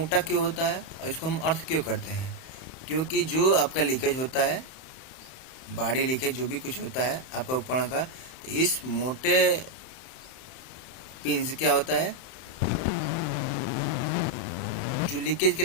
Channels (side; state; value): right; late; 31 ms